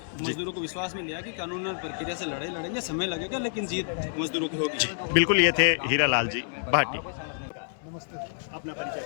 मजदूरों को विश्वास में लिया कि कानूनन प्रक्रिया से लड़ाई लड़ेंगे, समय लगेगा लेकिन जीत मजदूरों की होगी। बिल्कुल। ये थे हीरालाल जी भाटी। नमस्ते। अपना परिचय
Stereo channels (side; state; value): right; silent; 59 dB below the other